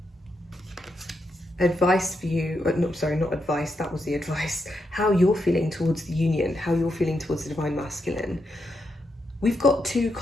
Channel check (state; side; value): normal; both; correlation 0.83